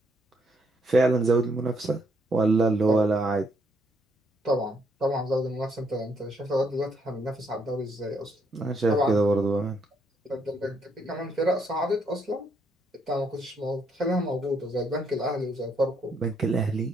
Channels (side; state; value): both; normal; correlation 0.73